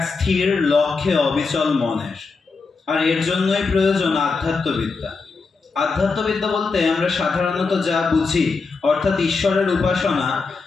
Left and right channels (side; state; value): right; quieter; 4.4 dB